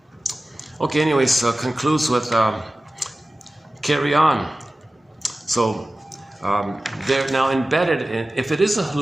Okay, anyways, concludes with carry on. So they're now embedded in, if it is a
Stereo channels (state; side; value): normal; both; correlation 0.96